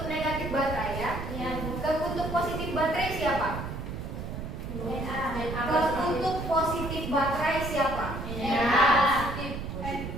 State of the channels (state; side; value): noise; right; rumble, 6 dB below the sound